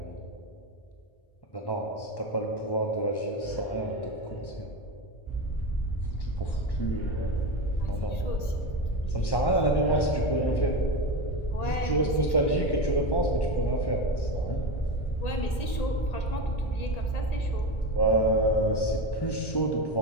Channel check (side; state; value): right; late; 1.8 ms